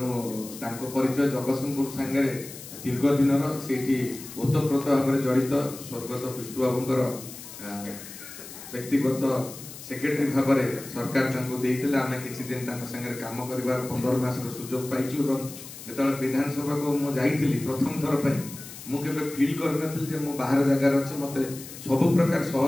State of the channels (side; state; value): left; noise; hiss, 14 dB below the sound